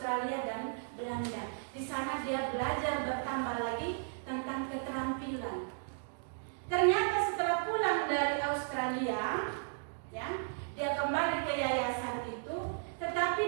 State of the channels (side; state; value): left; silent; digital silence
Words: dan Belanda. Di sana dia belajar bertambah lagi tentang keterampilan. Ternyata setelah pulang dari Australia, ya, dia kembali ke yayasan itu,